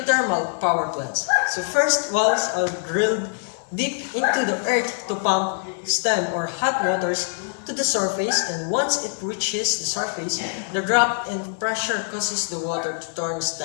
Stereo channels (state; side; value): silent; right; digital silence